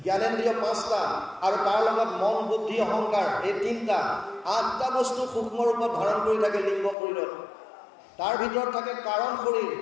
জ্ঞানেন্দ্ৰিয় 5টা, আৰু তাৰ লগত মন, বুদ্ধি, অহংকাৰ, এই 3টা, 8টা বস্তু সূক্ষ্ম ৰূপত ধাৰণ কৰি থাকে লিংগ শৰীৰত। তাৰ ভিতৰত থাকে কাৰণ শৰীৰ।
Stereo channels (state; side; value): drops out; right; at 7.0 s